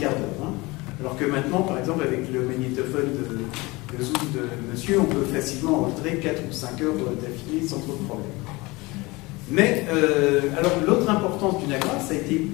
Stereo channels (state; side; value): quieter; right; 23.1 dB